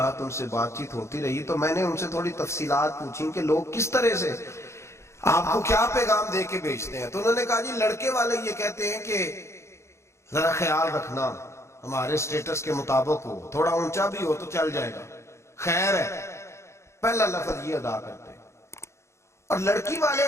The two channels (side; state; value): right; late; 0.13 ms